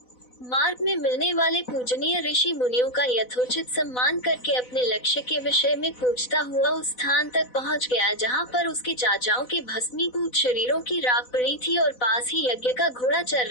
मार्ग में मिलने वाले पूजनीय ऋषि मुनियों का यथोचित सम्मान करके अपने लक्ष्य के विषय में पूछता हुआ उस स्थान तक पहुंच गया जहां पर उसके चाचाओं के भस्मीभूत शरीरों की राख पड़ी थी और पास ही यज्ञ का घोड़ा चल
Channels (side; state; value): right; late; 4.0 ms